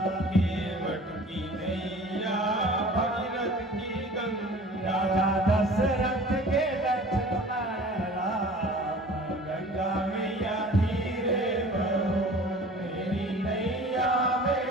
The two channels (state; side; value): normal; both; correlation 0.45